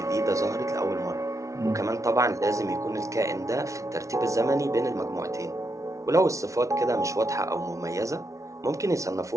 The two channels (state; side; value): late; left; 0.15 ms